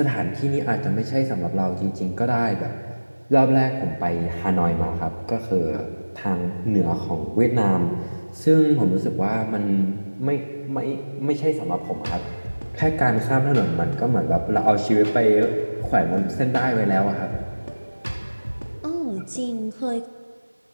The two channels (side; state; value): both; inverted; correlation -1.00